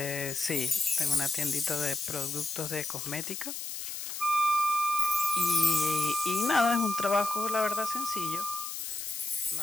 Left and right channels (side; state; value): left; noise; hiss, 6 dB below the sound